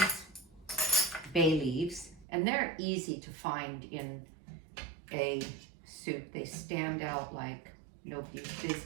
bay leaves, and they're easy to find in a soup. They stand out like nobody's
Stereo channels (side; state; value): left; drops out; at 2.2 s